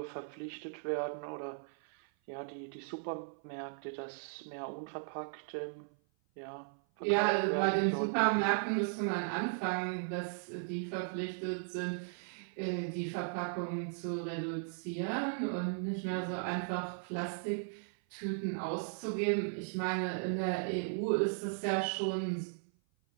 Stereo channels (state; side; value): silent; left; 53 dB below the other